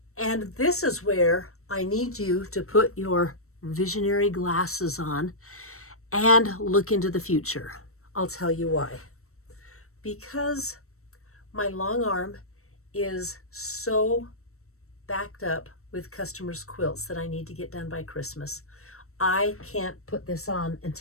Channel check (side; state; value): right; late; 0.63 ms